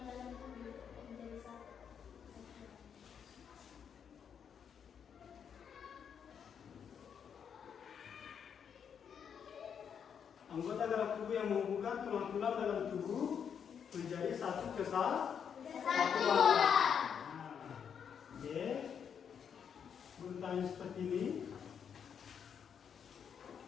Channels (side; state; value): right; quieter; 7.6 dB